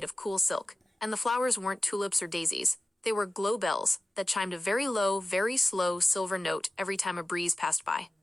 of cool silk, and the flowers weren't tulips or daisies. They were glow bells that chimed a very low, very slow silver note every time a breeze passed by.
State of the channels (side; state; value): both; normal; correlation 0.95